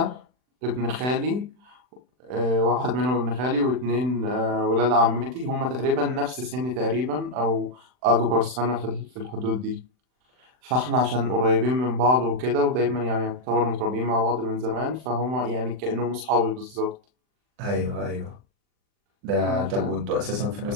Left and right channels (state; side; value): late; left; 39 ms